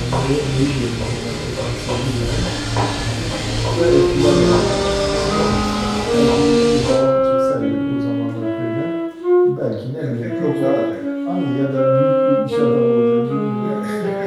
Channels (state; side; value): identical; both; correlation 1.00